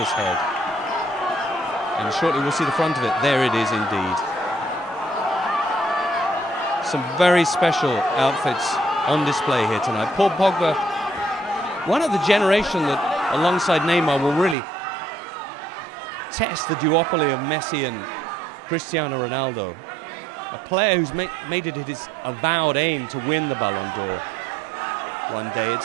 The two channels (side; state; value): left; drops out; at 14.6 s